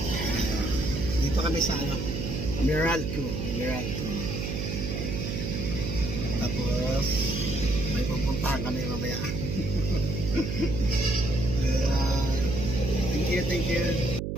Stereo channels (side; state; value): right; noise; hum, 3 dB below the sound